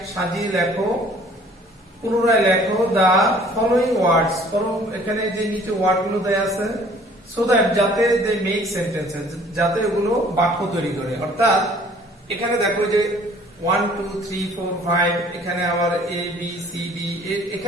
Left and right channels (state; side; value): normal; both; correlation 0.54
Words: সাজিয়ে লেখো, পুনরায় লেখো দা ফলোইং ওয়ার্ডস। এখানে যে নিচে ওয়ার্ড গুলো দেয়া আছে সো দ্যাট যাতে দে মেক সেন্টেন্সেস, যাতে এগুলো বাক্য তৈরি করে। অর্থাৎ এখানে দেখো যে 1 2 3 4 5 এখানে আবার এ বি সি ডি,